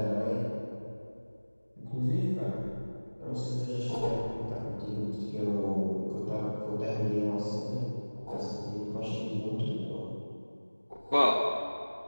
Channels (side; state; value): both; inverted; correlation -1.00